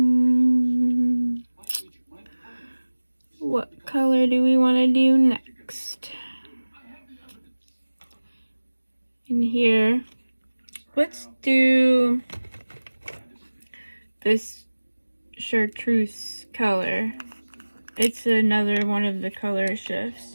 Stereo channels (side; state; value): both; inverted; correlation -1.00